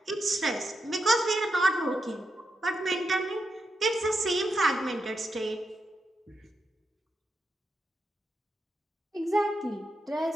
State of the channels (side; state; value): both; normal; correlation 0.85